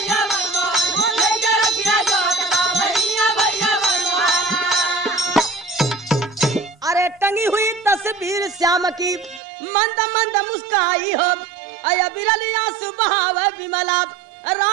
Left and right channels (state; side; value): drops out; left; at 9.4 s